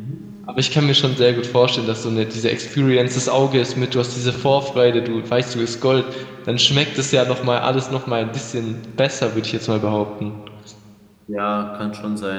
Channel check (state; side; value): identical; both; correlation 1.00